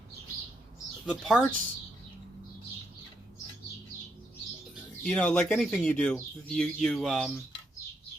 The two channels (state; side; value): normal; both; correlation 0.79